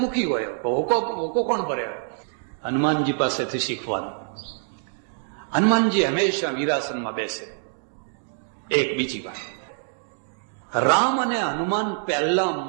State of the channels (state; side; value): silent; left; digital silence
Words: મુખી હોય, હોકો કોણ ભરે? હનુમાનજી પાસેથી શીખવાનું. હનુમાનજી હંમેશા વીરાસનમાં બેસે. એક બીજી વાત, રામ અને હનુમાન પહેલા